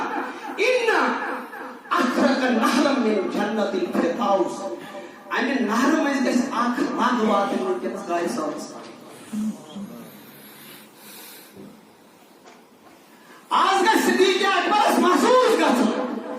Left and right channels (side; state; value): both; identical; correlation 1.00